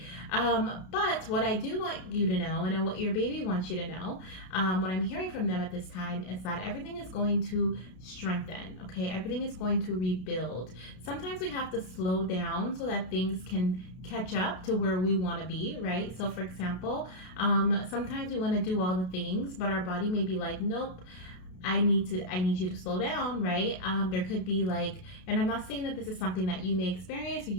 But what I do want you to know, and what your baby wants you to know, what I'm hearing from them at this time is that everything is going to strengthen, okay? Everything is going to rebuild. Sometimes we have to slow down so that things can catch up to where we want to be, right? So for example, sometimes we want to do all the things, but our body may be like, nope, I need you to slow down, right? There could be like, and I'm not saying that this is something that you may experience or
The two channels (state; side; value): late; right; 33 ms